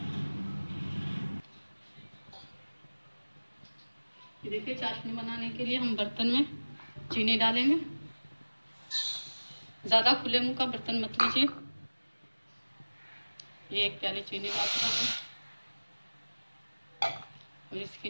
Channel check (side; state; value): both; inverted; correlation -1.00